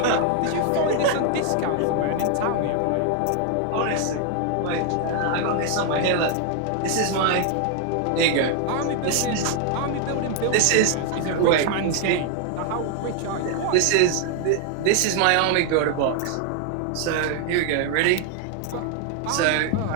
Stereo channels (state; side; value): different; both; correlation 0.00